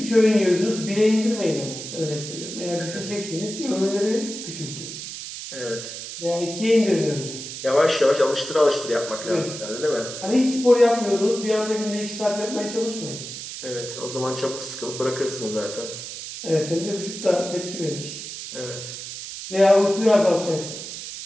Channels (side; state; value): right; noise; hiss, 9 dB below the sound